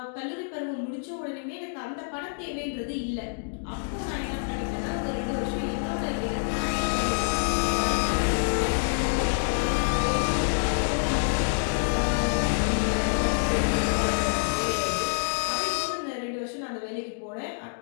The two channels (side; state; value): right; silent; digital silence